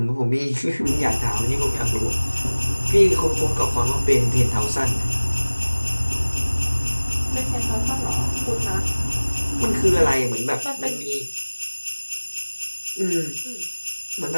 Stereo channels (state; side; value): inverted; both; correlation -1.00